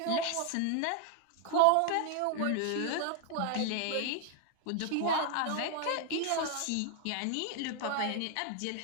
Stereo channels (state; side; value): different; both; correlation 0.00